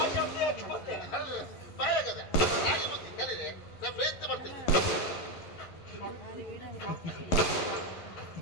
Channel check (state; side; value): late; right; 11 ms